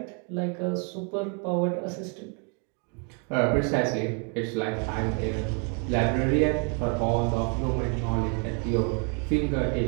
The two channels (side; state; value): left; quieter; 37.9 dB